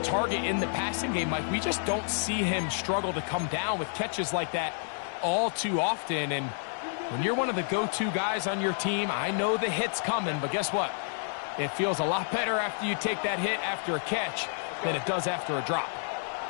target in the passing game, Mike. We just don't see him struggle to come down with catches like that all too often. And when you're one of the go-to guys on your team, I know the hit's coming, but guess what? It feels a lot better after you take that hit after a catch than it does after a drop.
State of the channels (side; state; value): right; silent; digital silence